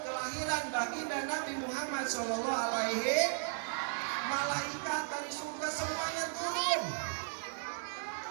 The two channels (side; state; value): left; silent; digital silence